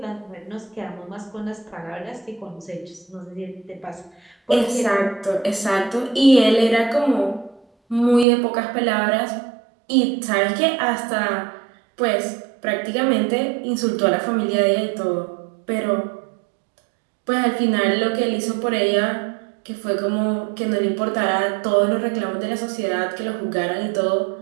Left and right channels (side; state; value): left; drops out; at 8.2 s